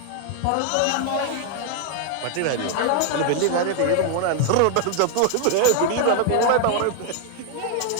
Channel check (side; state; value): both; different; correlation 0.00